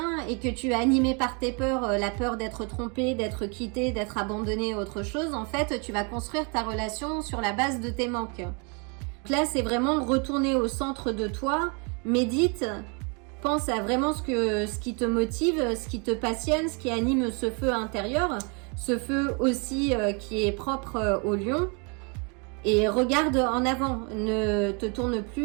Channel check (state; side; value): quieter; left; 34.4 dB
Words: et que tu es animé par tes peurs, la peur d'être trompé, d'être quitté, d'être abandonné, autre chose, en fait, tu vas construire ta relation sur la base de tes manques. Donc là, c'est vraiment retourner au centre de toi, médite, pense à vraiment ce qui te motive, ce qui te passionne, ce qui anime ce feu intérieur, ce feu aussi qui est propre au lion. Et regarde en avant, ne te tourne